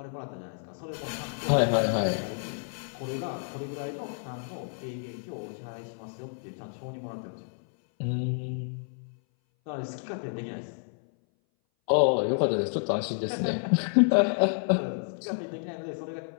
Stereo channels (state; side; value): silent; right; 58 dB below the other